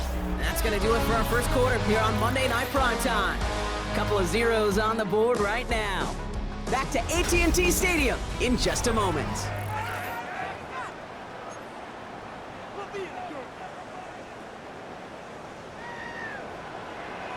That's going to do it for our first quarter here on Monday Night Prime Time. Couple of zeros on the board right now. Back to AT&T Stadium in just a moment.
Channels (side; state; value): both; identical; correlation 1.00